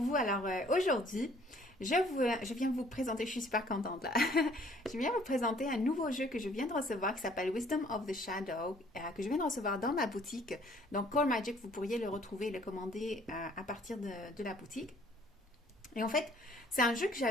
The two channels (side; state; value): both; normal; correlation 0.59